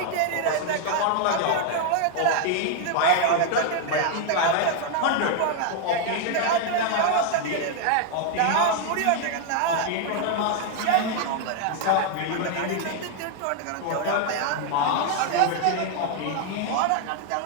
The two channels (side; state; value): both; different; correlation 0.00